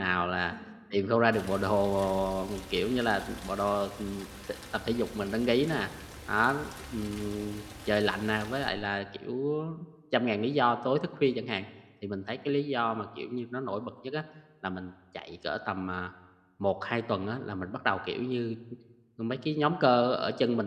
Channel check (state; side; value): identical; both; correlation 1.00